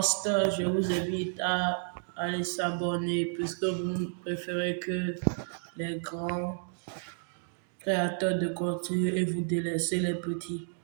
je vous invite à aller s'abonner puisque vous préférez que les grands créateurs de contenu et vous délaissez les petits.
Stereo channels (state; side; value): silent; left; digital silence